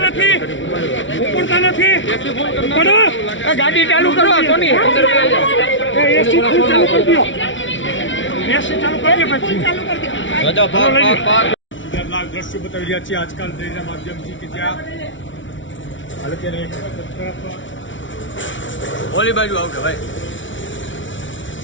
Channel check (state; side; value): late; right; 0.56 ms